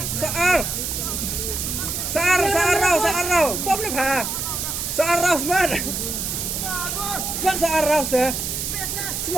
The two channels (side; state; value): right; noise; hiss, 3 dB below the sound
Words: sear rau, bom na pa. Sear rau semat. Semat sear rau dah.